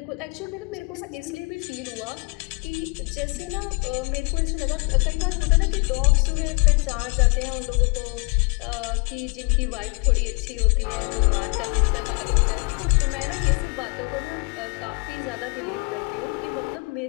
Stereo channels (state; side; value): quieter; right; 32.5 dB